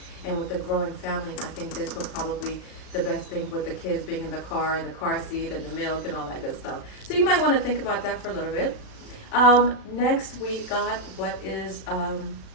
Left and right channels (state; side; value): late; right; 37 ms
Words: And with the growing family, I think this will probably the best thing with the kids being in the car and the car seat and the milk and all that good stuff. So you might want to think about that for a little bit. Next we got what is